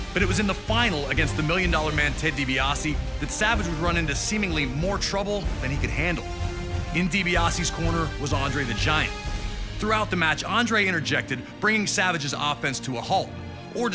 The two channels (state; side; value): identical; both; correlation 1.00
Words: But it was in the final against the $1 Million Man Ted DiBiase that Savage would run into seemingly more trouble than he could handle. In DiBiase's corner was Andre the Giant. Throughout the match, Andre interjected, bringing Savage's offense to a halt, or